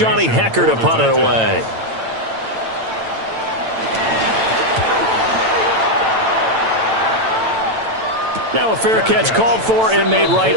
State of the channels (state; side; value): late; left; 9.0 ms